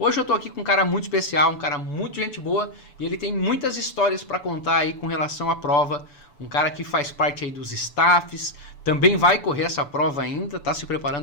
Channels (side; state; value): right; late; 6.9 ms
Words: eu estou aqui com um cara muito especial, um cara muito gente boa e ele tem muitas histórias para contar aí com relação à prova. Um cara que faz parte aí dos staffs, também vai correr essa prova ainda, está se